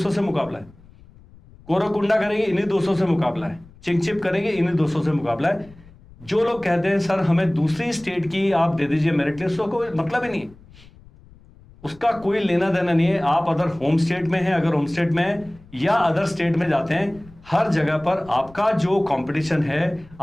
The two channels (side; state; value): left; noise; rumble, 24 dB below the sound